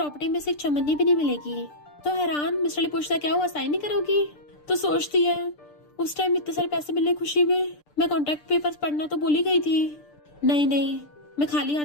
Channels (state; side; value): late; right; 6.8 ms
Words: में से एक चमन्नी भी नहीं मिलेगी। तो हैरान मिस्टर ली पूछता, क्या हुआ, साइन नहीं करोगी? तो सोचती है, उस टाइम इतने सारे पैसे मिलने खुशी में मैं कॉन्ट्रैक्ट पेपर्स पढ़ना तो भूल ही गई थी। नहीं, मैं खाली हाथ